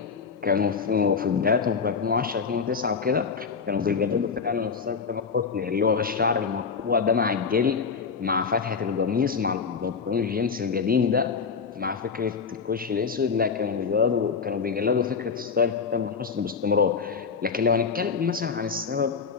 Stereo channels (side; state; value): right; quieter; 5.6 dB